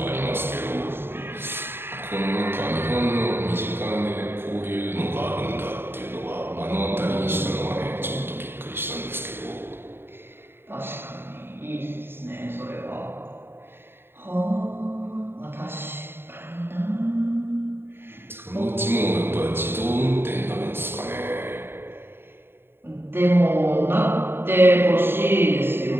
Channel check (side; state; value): left; late; 0.11 ms